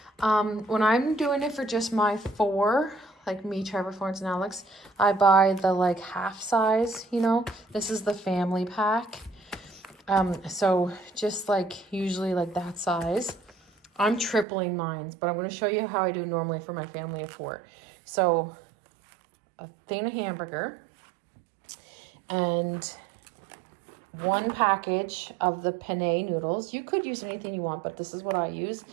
When I'm doing it for just my 4, like me, Trevor, Florence, and Alex, I buy the like half size, you know. This is the family pack. So just like usually like that size. I'm tripling mine, but I'm going to show you how I do normally for my family of 4. So a thing of hamburger and 1 package of the penne noodles. You could use anything you want, but this is what I use.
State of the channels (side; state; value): left; drops out; at 14.5 s